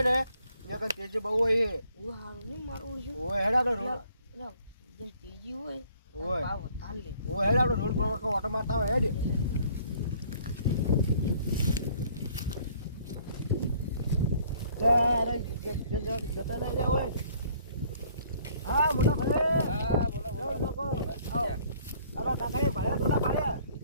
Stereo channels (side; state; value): both; inverted; correlation -0.59